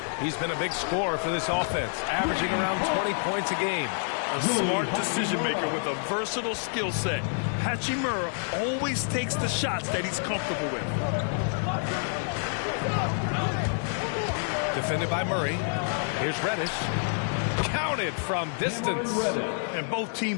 He's been a big scorer for this offense, averaging around 20 points a game. A smart decision maker with a versatile skill set. Hachimura always takes the shots that he's comfortable with. Defended by Murray. Here's Reddish. Counted from distance. And both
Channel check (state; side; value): silent; right; 59 dB below the other